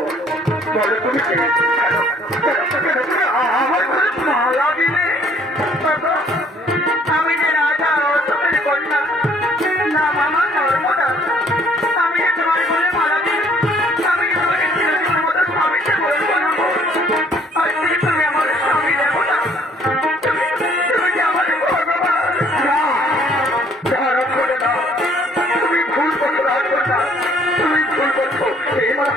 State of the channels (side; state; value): both; normal; correlation 0.61